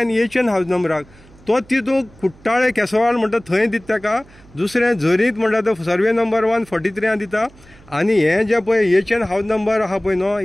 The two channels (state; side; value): noise; right; hum, 25 dB below the sound